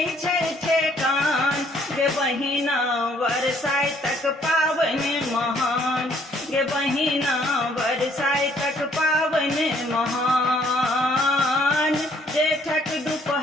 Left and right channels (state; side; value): normal; both; correlation 0.64